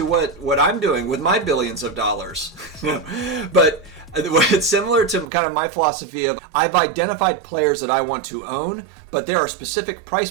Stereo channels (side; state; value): left; drops out; at 5.2 s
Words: what I'm doing with my billions of dollars. But it's similar to kind of my philosophy of, I've identified players that I want to own, but there are specific price